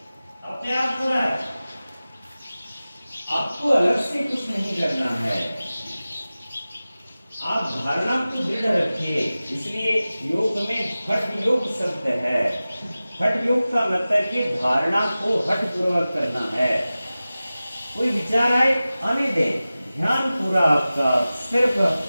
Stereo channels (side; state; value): both; inverted; correlation -0.96